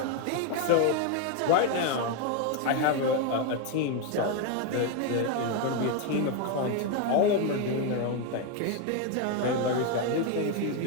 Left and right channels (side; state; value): both; different; correlation 0.01